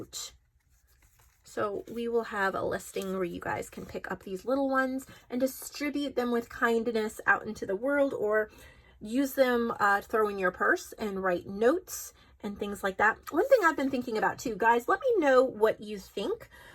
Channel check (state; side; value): identical; both; correlation 1.00